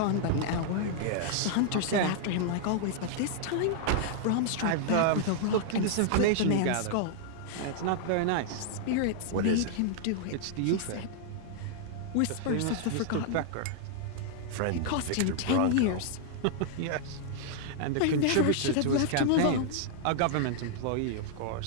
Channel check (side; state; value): both; different; correlation -0.01